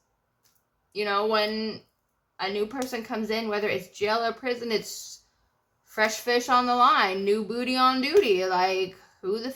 when a new person comes in, whether it's jail or prison, it's fresh fish on the line, new booty on duty. Like, who the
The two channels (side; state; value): both; identical; correlation 1.00